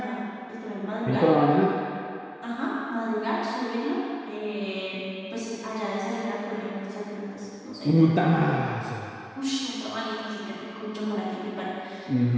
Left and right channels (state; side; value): identical; both; correlation 1.00